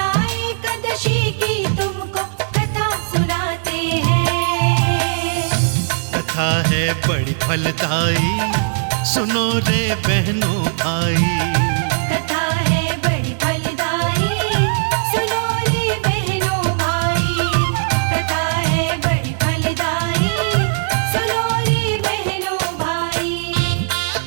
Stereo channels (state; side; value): silent; left; digital silence